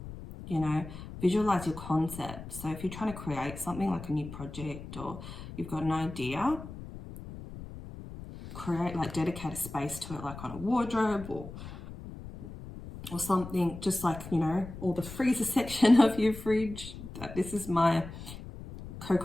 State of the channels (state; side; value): noise; left; rumble, 12 dB below the sound